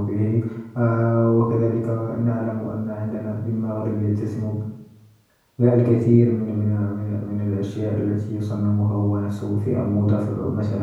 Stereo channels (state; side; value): identical; both; correlation 1.00